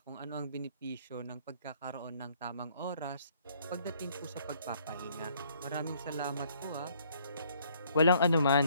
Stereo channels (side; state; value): both; inverted; correlation -0.63